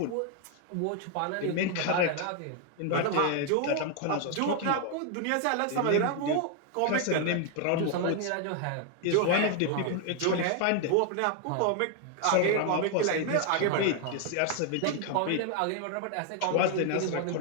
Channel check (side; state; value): both; different; correlation 0.01